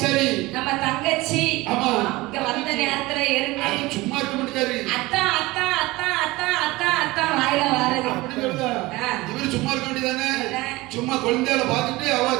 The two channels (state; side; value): quieter; left; 20.5 dB